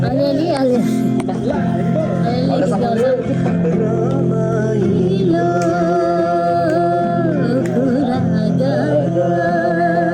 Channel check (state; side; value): identical; both; correlation 1.00